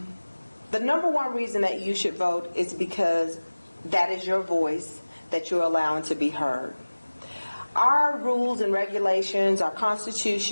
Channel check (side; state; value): both; inverted; correlation -1.00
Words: number one reason that you should vote is because that is your voice that you're allowing to be heard. Our rules and regulations, our